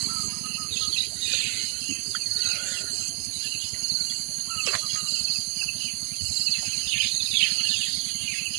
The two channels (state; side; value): quieter; left; 39.2 dB